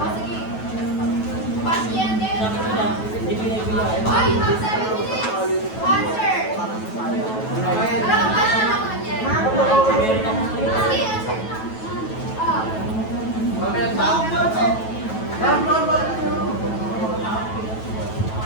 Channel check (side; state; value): right; late; 9.2 ms